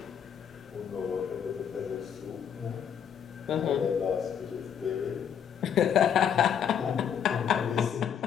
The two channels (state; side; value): quieter; right; 8.3 dB